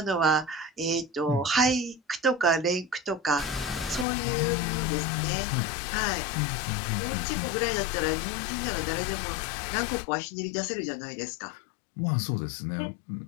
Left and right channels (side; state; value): right; drops out; at 4.0 s